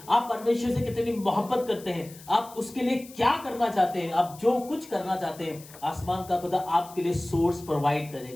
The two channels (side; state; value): left; noise; hiss, 20 dB below the sound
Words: आप परमेश्वर से कितनी मोहब्बत करते हैं? आप उसके लिए क्या करना चाहते हैं? आप जो कुछ करना चाहते हैं, आसमान का खुदा आपके लिए सोर्स प्रोवाइड